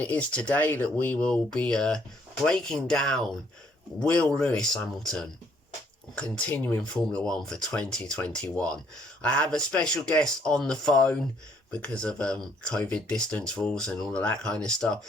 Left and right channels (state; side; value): normal; both; correlation 0.67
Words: it is today that we will be breaking down Will Lewis Hamilton continuing Formula 1 for 2021. I have a special guest on the phone because of COVID distance rules and all of that kind of